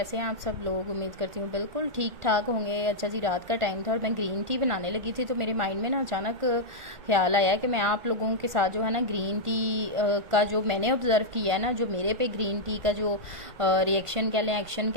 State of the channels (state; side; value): late; left; 1.5 ms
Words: हैं आप सब लोग। उम्मीद करती हूँ बिल्कुल ठीक ठाक होंगे। अच्छा जी, रात का टाइम था और मैं ग्रीन टी बनाने लगी थी तो मेरे माइंड में ना अचानक ख्याल आया कि मैं आप लोगों के साथ जो है ना ग्रीन टी का जो मैंने ऑब्ज़र्व किया है ना, जो मेरे पे ग्रीन टी का जो रिएक्शन कह लें, एक्शन